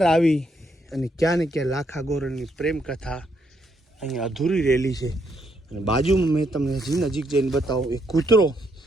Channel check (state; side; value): normal; both; correlation 0.75